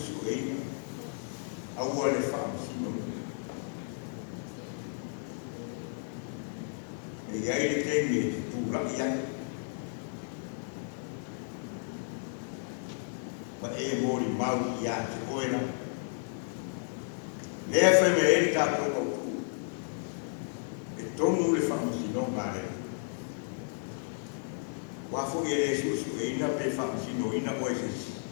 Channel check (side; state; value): right; silent; digital silence